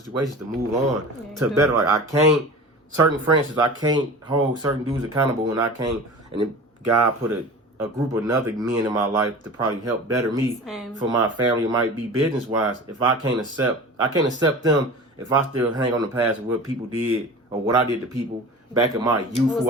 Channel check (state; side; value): normal; both; correlation 0.36